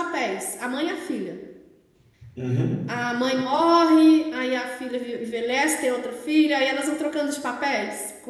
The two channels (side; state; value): both; identical; correlation 1.00